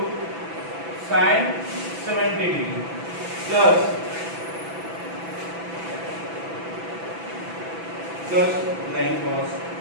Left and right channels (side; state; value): left; late; 6.0 ms